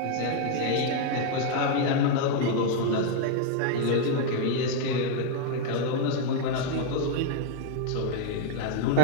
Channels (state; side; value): different; both; correlation 0.01